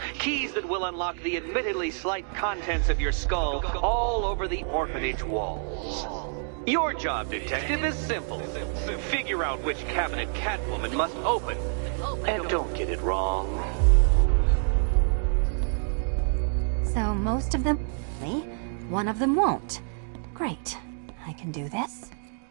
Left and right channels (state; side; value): silent; left; 60 dB below the other